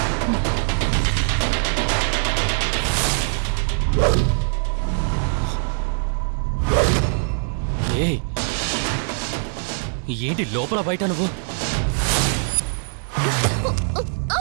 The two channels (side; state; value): left; silent; digital silence